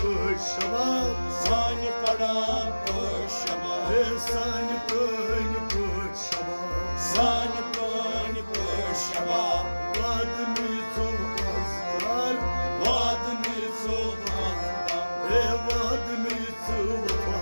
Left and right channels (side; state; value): both; inverted; correlation -1.00